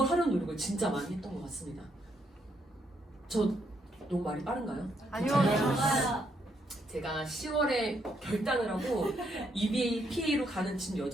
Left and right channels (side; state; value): both; normal; correlation 0.75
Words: 하려는 노력을 진짜 많이 했던 것 같습니다. 저 너무 말이 빠른가요? 아니요. 제가 10월에 결단을 하고 EBAPA로 가는 진